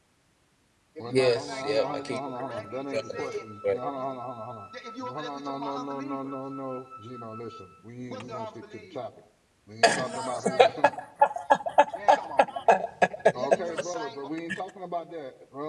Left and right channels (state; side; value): identical; both; correlation 1.00